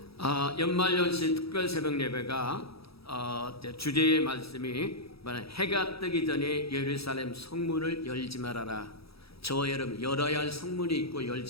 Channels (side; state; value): right; late; 0.77 ms